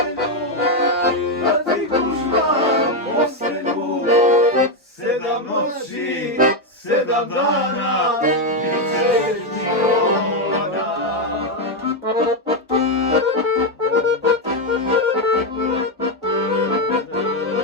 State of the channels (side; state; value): both; normal; correlation 0.05